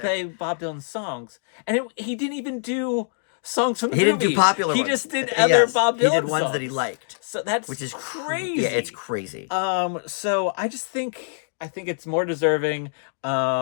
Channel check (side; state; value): right; silent; digital silence